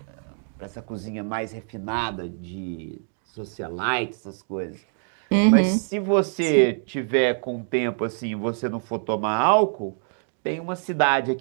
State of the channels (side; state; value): left; silent; 62 dB below the other